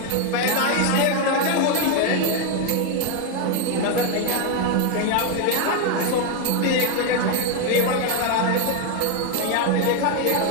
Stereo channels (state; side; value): different; both; correlation 0.01